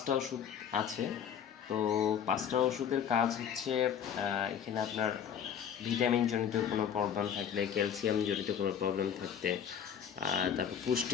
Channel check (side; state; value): right; quieter; 8.3 dB